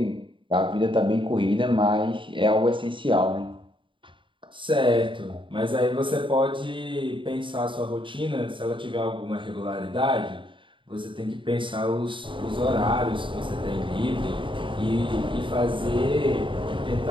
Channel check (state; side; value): late; left; 0.24 ms